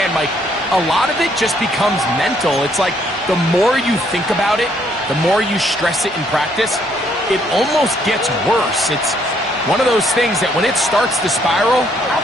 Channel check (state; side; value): normal; both; correlation 0.69